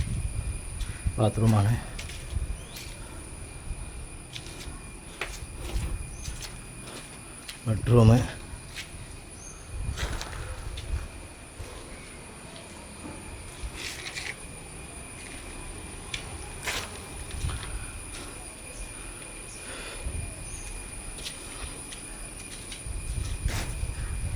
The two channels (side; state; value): both; identical; correlation 1.00